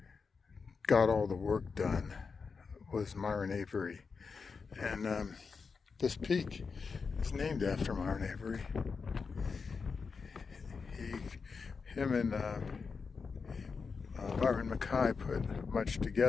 got all the work done, was Myron Avery. And this peak is named after Myron Avery. Him and Byron Mackay put much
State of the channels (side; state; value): right; quieter; 5.1 dB